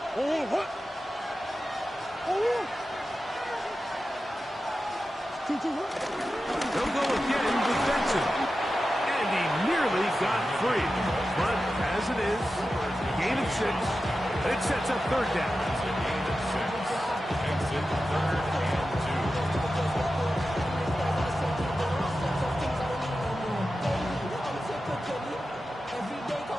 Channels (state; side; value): normal; both; correlation 0.92